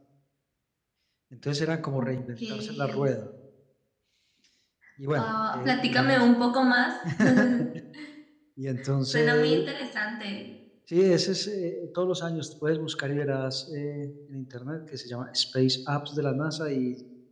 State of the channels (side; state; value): both; identical; correlation 1.00